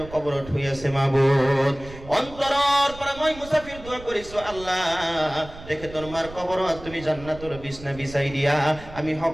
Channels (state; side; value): noise; right; rumble, 16 dB below the sound